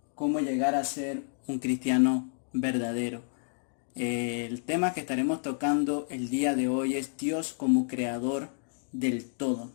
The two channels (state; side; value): silent; right; digital silence